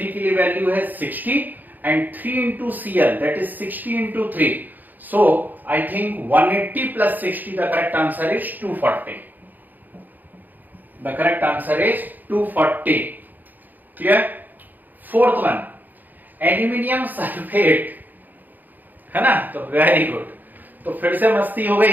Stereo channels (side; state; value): left; late; 0.085 ms